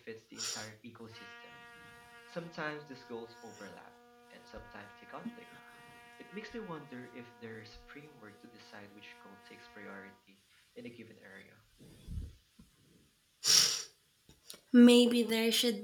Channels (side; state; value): both; identical; correlation 1.00